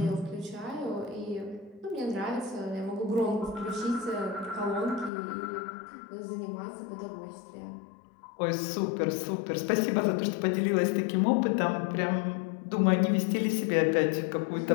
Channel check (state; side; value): drops out; right; at 5.1 s